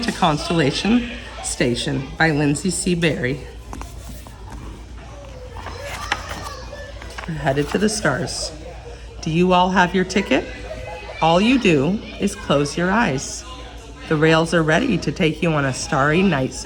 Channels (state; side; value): identical; both; correlation 1.00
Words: Constellation Station by Lindsay C. Berry. We're headed to the stars. Do you all have your ticket? All you do is close your eyes. The rails are ready to take you on a starry night